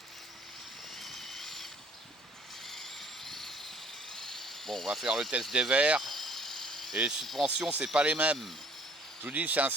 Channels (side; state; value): both; normal; correlation 0.56